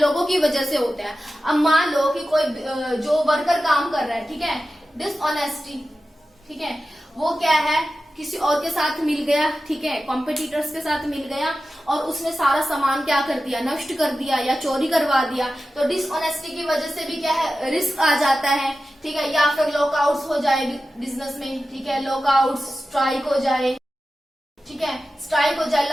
की वजह से होता है। अब मान लो कि कोई जो वर्कर काम कर रहा है, ठीक है, डिसऑनेस्टी, ठीक है, वो क्या है, किसी और के साथ मिल गया, ठीक है, कॉम्पिटिटर्स के साथ मिल गया और उसने सारा सामान क्या कर दिया, नष्ट कर दिया या चोरी करवा दिया। तो डिसऑनेस्टी की वजह से भी क्या है, रिस्क आ जाता है, ठीक है। या फिर लॉकआउट्स हो जाए बिजनेस में, ठीक है, लॉकआउट, स्ट्राइक हो जाए, ठीक है, स्ट्राइक हो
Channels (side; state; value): both; normal; correlation 0.93